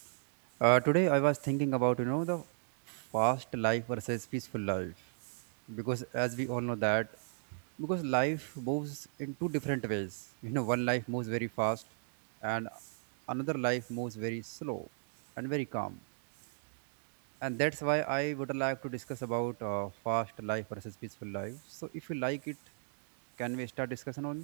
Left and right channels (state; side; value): silent; left; digital silence